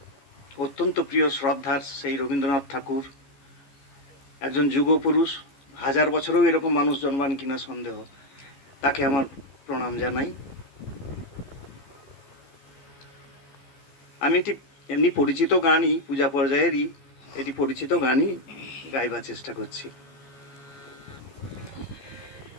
অত্যন্ত প্রিয় শ্রদ্ধার সেই রবীন্দ্রনাথ ঠাকুর একজন যুগপুরুষ, হাজার বছরেও এরকম মানুষ জন্মান কিনা সন্দেহ, তাকে আমার প্রণাম জানাই। আমি এটি এমনি পরিচিত গানই, পূজা পর্যায়েরই এটি পরিচিত গানই গাইবার চেষ্টা করছি।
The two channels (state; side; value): late; right; 14 ms